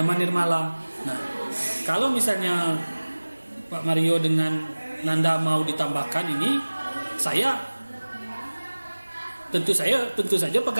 Nirmala. Nah, kalau misalnya Pak Mario dengan Nanda mau ditambahkan ini, tentu saja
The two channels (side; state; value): both; inverted; correlation -1.00